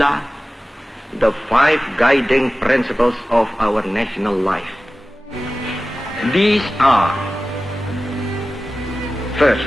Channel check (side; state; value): both; normal; correlation 0.95